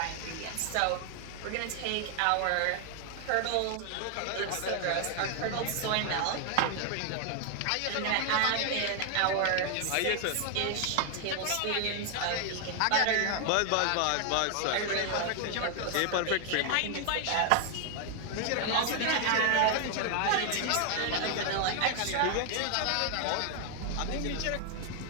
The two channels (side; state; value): both; different; correlation 0.00